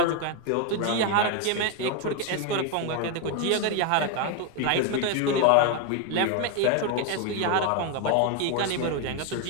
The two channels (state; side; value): different; both; correlation 0.01